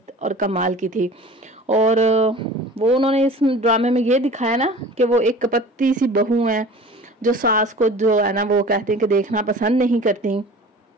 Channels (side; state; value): both; normal; correlation 0.42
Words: और कमाल की थी। और वो उन्होंने इस ड्रामे में ये दिखाया ना कि वो एक कपत्ती सी बहू है जो सास को जो है ना वो कहते हैं कि देखना पसंद नहीं करती।